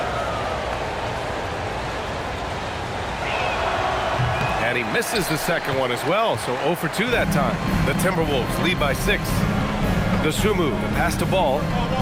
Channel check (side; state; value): both; identical; correlation 1.00